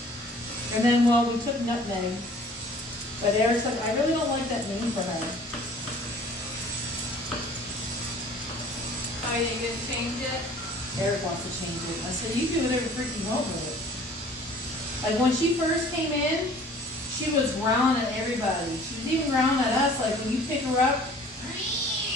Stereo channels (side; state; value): both; normal; correlation 0.50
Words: And then, well, we took Nutmeg. But Eric's like, I really don't like that name for her. Oh, you didn't change it? Eric wants to change it. I said, you do whatever freaking you want with it. Like when she first came in, she was growling at everybody. She was even growling at us, like when you pick her up.